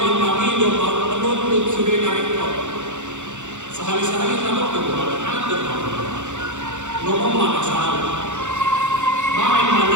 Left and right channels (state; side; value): late; left; 0.85 ms